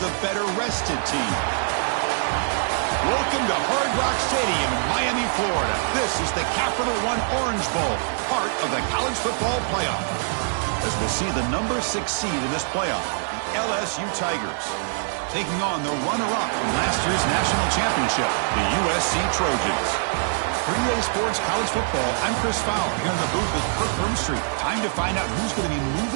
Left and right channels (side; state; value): left; silent; 63 dB below the other